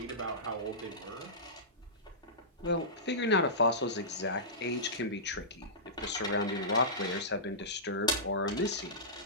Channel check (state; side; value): normal; both; correlation -0.19